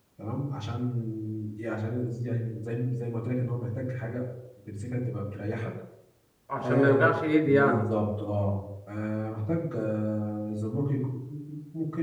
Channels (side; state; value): both; identical; correlation 1.00